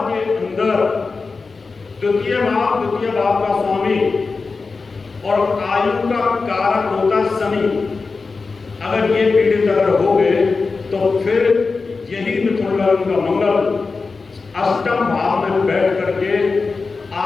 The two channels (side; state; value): right; quieter; 4.3 dB